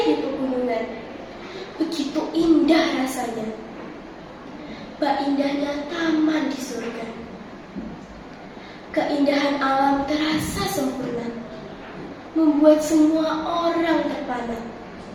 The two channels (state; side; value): identical; both; correlation 1.00